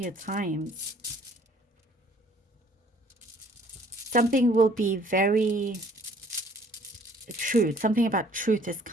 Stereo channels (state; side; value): normal; both; correlation 0.57